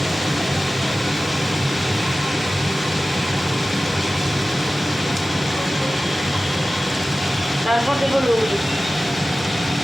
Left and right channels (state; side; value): normal; both; correlation 0.95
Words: তারপর দেবো নুডলস।